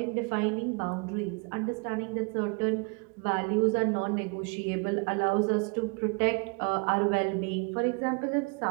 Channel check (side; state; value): left; quieter; 33.0 dB